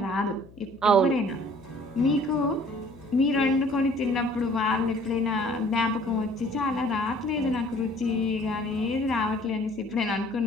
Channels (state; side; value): noise; left; hum, 22 dB below the sound